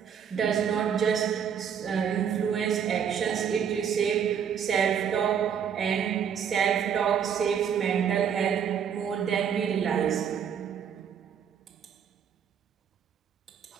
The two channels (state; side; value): quieter; left; 8.0 dB